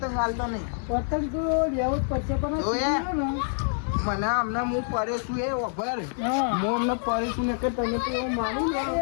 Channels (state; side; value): silent; right; digital silence